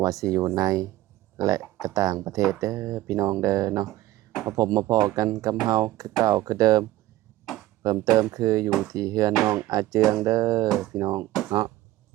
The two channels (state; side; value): quieter; left; 15.9 dB